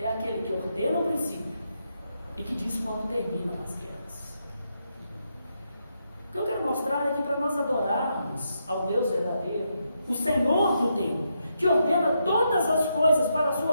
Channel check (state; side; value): inverted; both; correlation -0.81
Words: aquele que ordena o princípio e que diz quando terminam as guerras. O que eu quero mostrar é que para nós adorarmos ao Deus verdadeiro, o Senhor do tempo, que ordena todas as coisas para a